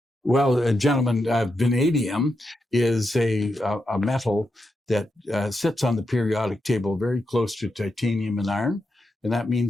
Well, gentlemen, vanadium is a metal that sits on the periodic table very close to titanium and iron. And that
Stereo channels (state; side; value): normal; both; correlation 0.85